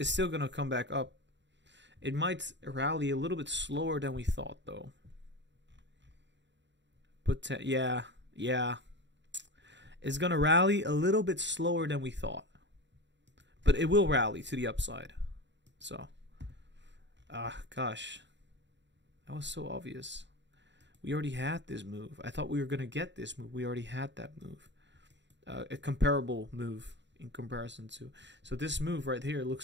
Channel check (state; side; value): late; left; 0.52 ms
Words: still gonna come back up. It might rally a little bit slower than we thought, though. But yeah, it's gonna rally a little bit slower than we thought, but it will rally to the upside. So, gosh, that was so obvious. We already had this move. I thought we were gonna get this move. We already had that move, a comparable move in comparison to. So this move right here